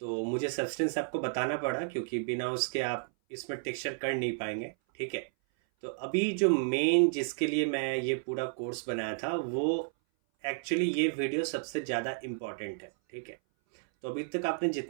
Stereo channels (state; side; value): silent; left; 56 dB below the other